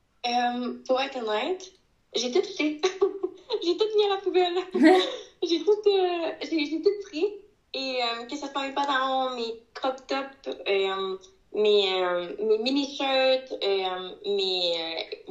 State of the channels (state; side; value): identical; both; correlation 1.00